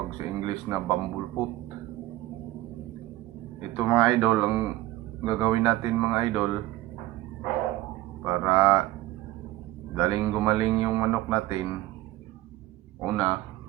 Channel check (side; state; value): left; quieter; 16.7 dB